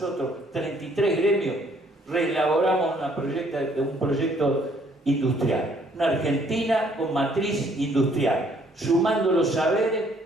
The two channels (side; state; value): both; normal; correlation 0.64